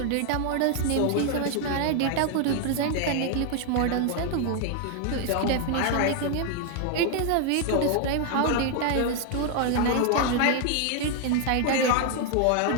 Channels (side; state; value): both; different; correlation 0.00